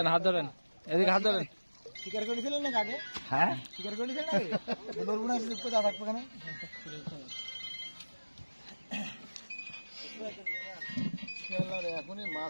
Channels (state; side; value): inverted; both; correlation -1.00